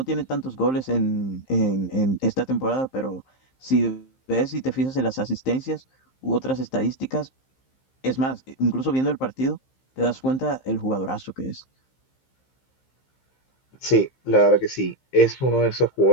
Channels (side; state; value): right; late; 15 ms